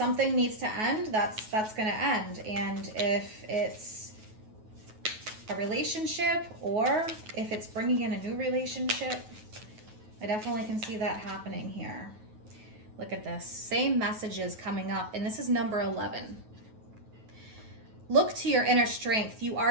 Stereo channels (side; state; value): left; late; 9.3 ms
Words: needs to end, that's going to end. And if it's a relationship, or if it's bringing in a new relationship, I definitely can see that happening here. Look at this. Same messages coming up, and this is number 11. Look to your inner strength. You